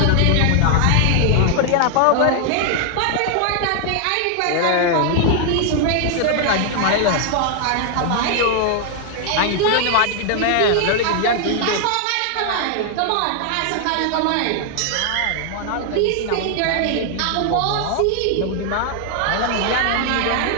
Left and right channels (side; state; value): both; different; correlation 0.00